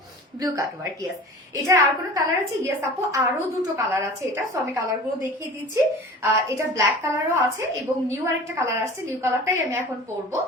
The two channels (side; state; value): both; normal; correlation 0.40